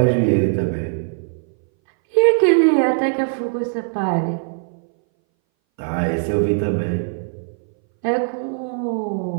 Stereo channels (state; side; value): silent; left; 61 dB below the other